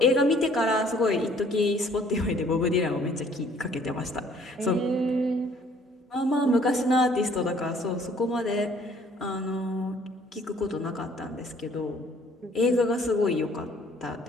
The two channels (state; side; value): normal; both; correlation 0.59